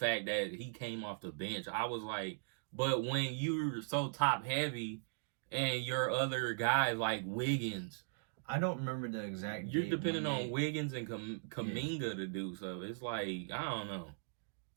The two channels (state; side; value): silent; left; digital silence